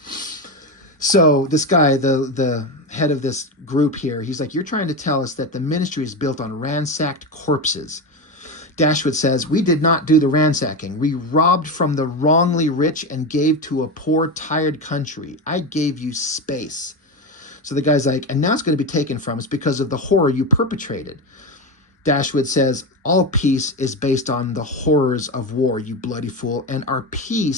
So this guy, the head of this group here, he's like, you're trying to tell us that the ministry is built on ransacked corpses. Dashwood says, we did not do the ransacking. We robbed from the wrongly rich and gave to a poor, tired country. I gave you space. So the guy's like, and now it's going to be taken from us because of the horror you perpetrated. Dashwood says, all peace is based on the horrors of war, you bloody fool, and our peace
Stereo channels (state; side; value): normal; both; correlation 0.17